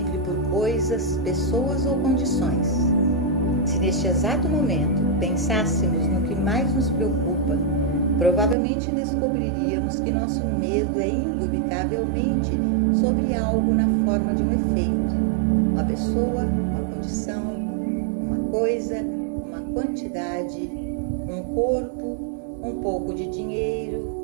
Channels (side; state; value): left; drops out; at 8.6 s